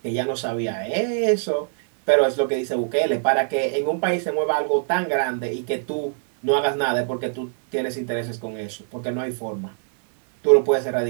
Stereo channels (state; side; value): silent; left; digital silence